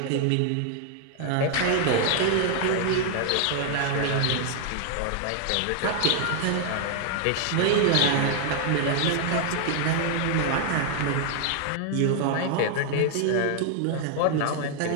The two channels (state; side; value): different; both; correlation 0.00